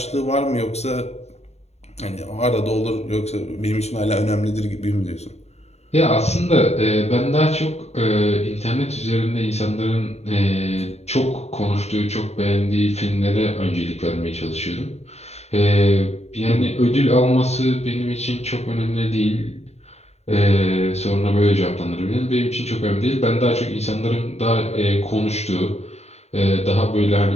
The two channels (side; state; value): right; late; 0.31 ms